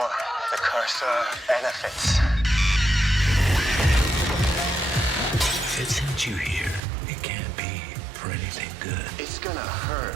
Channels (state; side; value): drops out; left; at 6.8 s